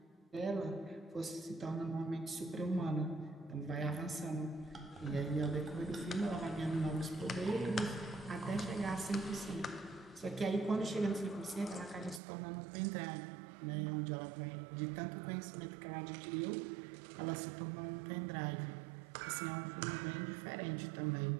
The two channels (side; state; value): left; drops out; at 12.2 s